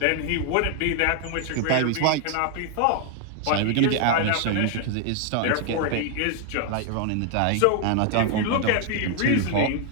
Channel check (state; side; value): different; both; correlation 0.00